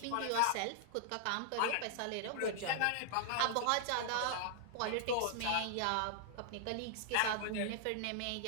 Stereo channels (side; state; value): both; different; correlation -0.01